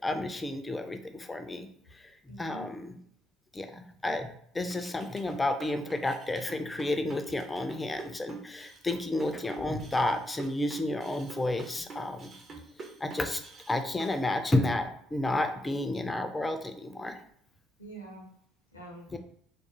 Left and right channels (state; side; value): normal; both; correlation 0.86